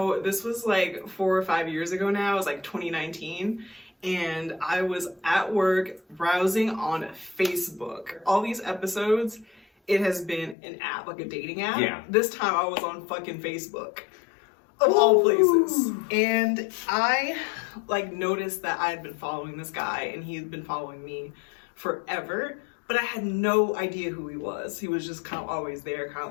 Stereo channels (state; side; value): drops out; right; at 10.6 s